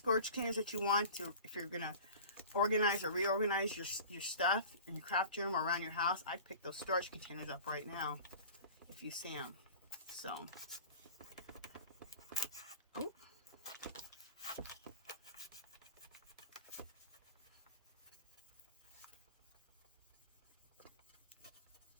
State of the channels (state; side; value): inverted; both; correlation -0.39